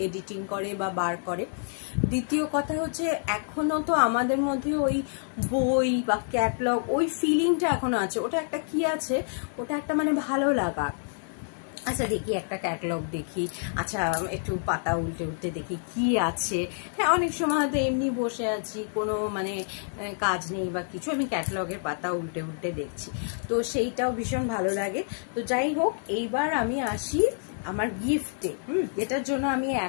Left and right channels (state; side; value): silent; right; digital silence